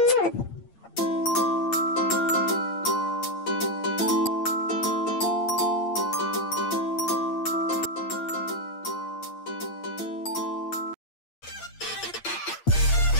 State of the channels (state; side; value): late; right; 8.7 ms